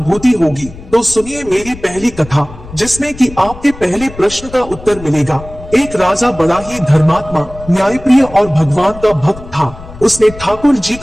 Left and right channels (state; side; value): noise; left; rumble, 16 dB below the sound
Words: होगी। तो सुनिए मेरी पहली कथा, जिसमें कि आपके पहले प्रश्न का उत्तर मिलेगा। एक राजा बड़ा ही धर्मात्मा, न्यायप्रिय और भगवान का भक्त था। उसने ठाकुर जी